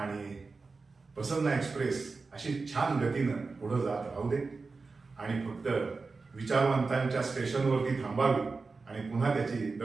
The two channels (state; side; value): quieter; left; 4.2 dB